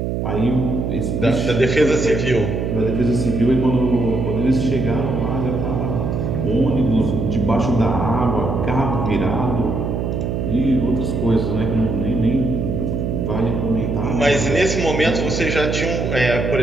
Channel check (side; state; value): right; noise; hum, 1 dB below the sound